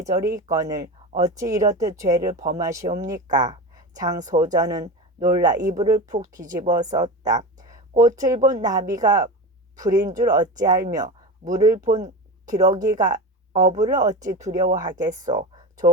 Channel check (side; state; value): both; normal; correlation 0.25